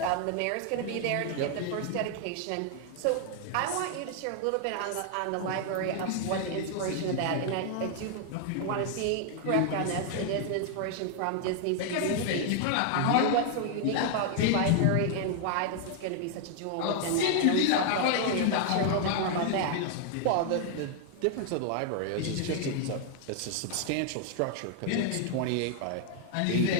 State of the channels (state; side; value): different; both; correlation 0.00